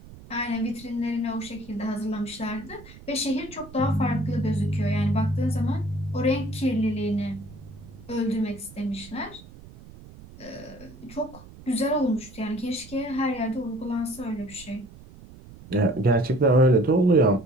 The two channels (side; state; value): right; noise; rumble, 19 dB below the sound